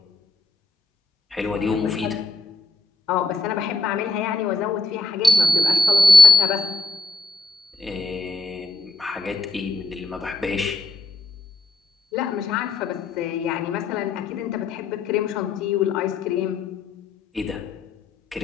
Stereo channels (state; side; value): quieter; right; 3.3 dB